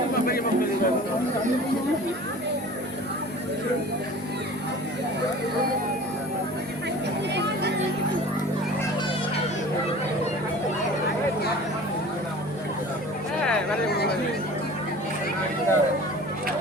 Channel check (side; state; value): both; normal; correlation 0.42